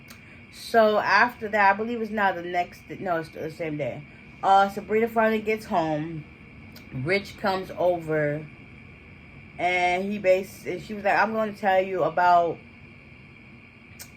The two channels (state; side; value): identical; both; correlation 1.00